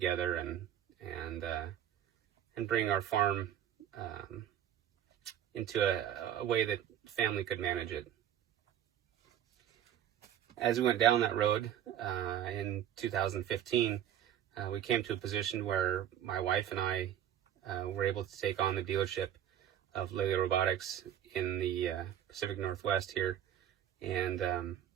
and bring our farm into a way that family could manage it. As we went down that road in 2015, we came to a position where my wife and I were able to take on the dealership of Lely Robotics in the Pacific Northwest here, and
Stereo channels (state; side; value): quieter; left; 10.5 dB